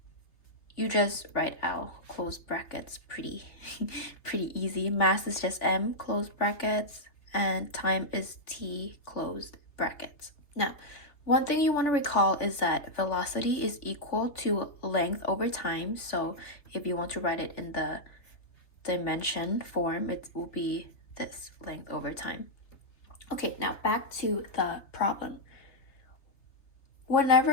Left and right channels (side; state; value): right; late; 3.3 ms